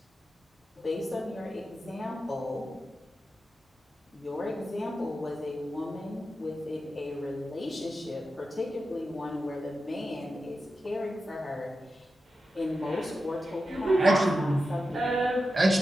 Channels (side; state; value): both; normal; correlation 0.91